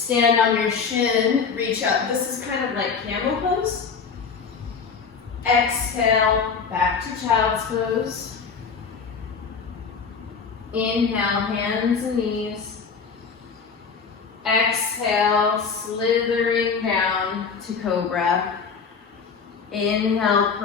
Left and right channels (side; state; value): right; quieter; 5.7 dB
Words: on your shin, reach up. This is kind of like camel pose. Exhale, back to child's pose. Inhale, hands and knees. Exhale, slithering down to cobra. Inhale,